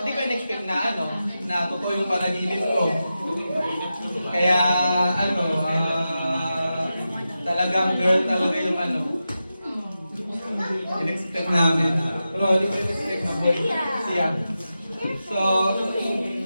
hindi ko in-expect na ano, na totoo yung panaginip ko. Kaya ano, talagang girl talaga yung ano. In-expect namin. Pero hindi ko in-expect na boy. Siya. So,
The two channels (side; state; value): both; inverted; correlation -0.91